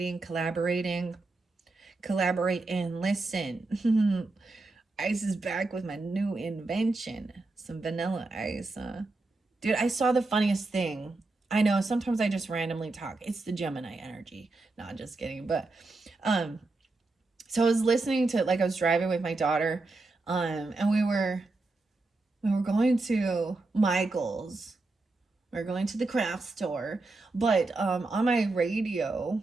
collaborating. Collaborate and listen. Ice is back with my new invention. Some vanilla ice. Dude, I saw the funniest thing. I know sometimes I just randomly talk. It's the Gemini energy. Not just kidding. But so I was listening to, like, I was driving with my daughter, and we were going to Michael's. We were going to the craft store. But on my radio,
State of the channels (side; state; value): left; quieter; 3.3 dB